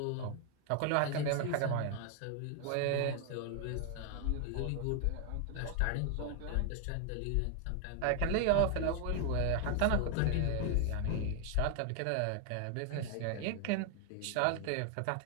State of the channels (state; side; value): different; both; correlation 0.00